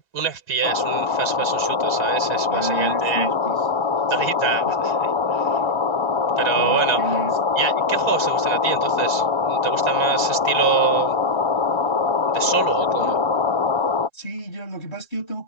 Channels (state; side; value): late; right; 1.3 ms